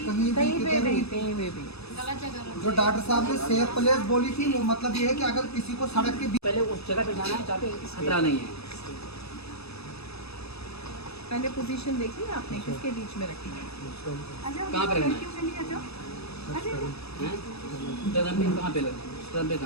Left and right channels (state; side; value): late; right; 0.78 ms